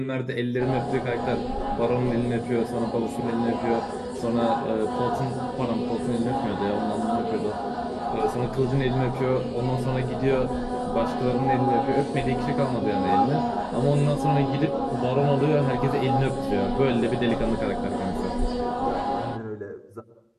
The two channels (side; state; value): both; identical; correlation 1.00